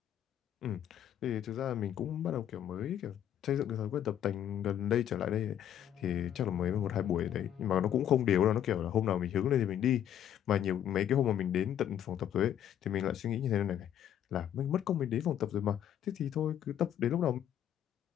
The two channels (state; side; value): quieter; right; 10.3 dB